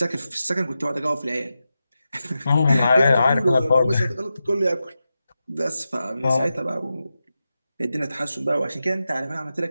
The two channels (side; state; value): both; inverted; correlation -0.91